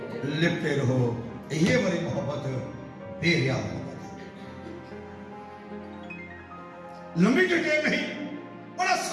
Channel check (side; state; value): both; identical; correlation 1.00